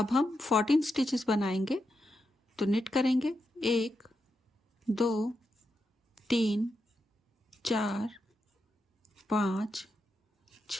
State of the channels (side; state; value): both; normal; correlation 0.86